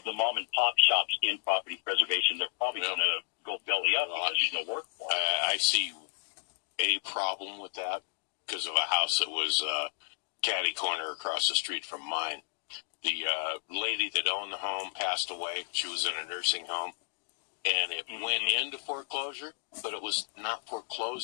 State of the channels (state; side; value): silent; right; digital silence